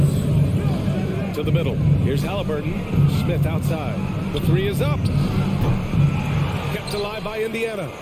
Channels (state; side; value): identical; both; correlation 1.00